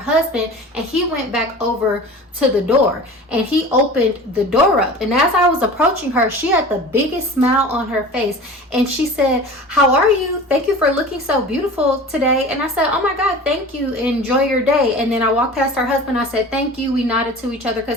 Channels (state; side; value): normal; both; correlation 0.38